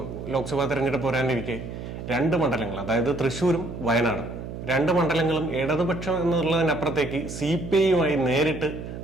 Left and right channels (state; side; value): noise; right; hum, 9 dB below the sound